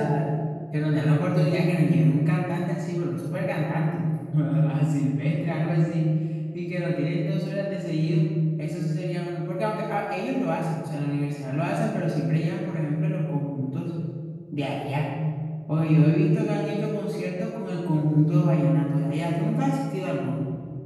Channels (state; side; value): identical; both; correlation 1.00